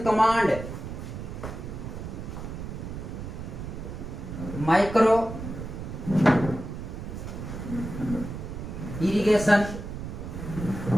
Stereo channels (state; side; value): noise; right; rumble, 8 dB below the sound